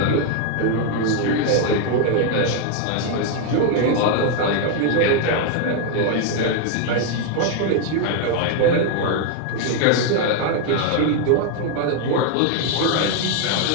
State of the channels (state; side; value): different; both; correlation 0.00